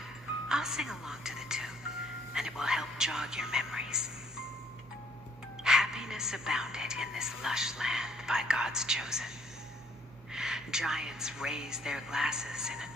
I'll sing along to the tune, and it will help jog your memories. Happiness abounded in this lush land by God's chosen. Giants raised their glasses in a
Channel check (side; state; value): right; noise; hum, 22 dB below the sound